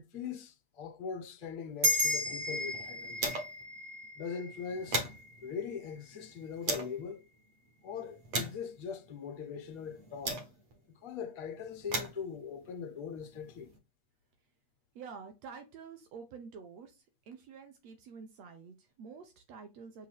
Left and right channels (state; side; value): late; left; 8.4 ms